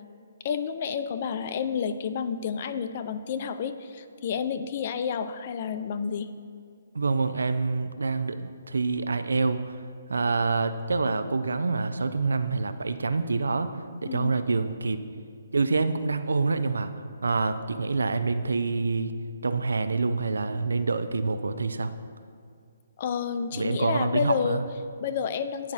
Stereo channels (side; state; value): both; inverted; correlation -0.80